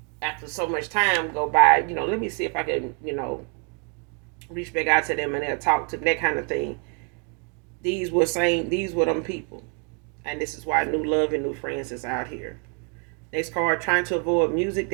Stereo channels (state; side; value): quieter; left; 33.6 dB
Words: after so much time go by, let me see if I can reach back out to them and they'll talk to that kind of thing. These were them people, and this is why new love and new friends is out here. Next card, trying to avoid music